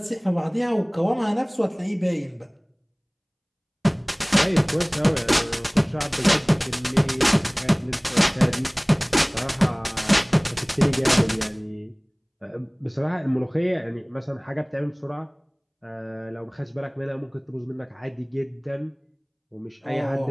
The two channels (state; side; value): identical; both; correlation 1.00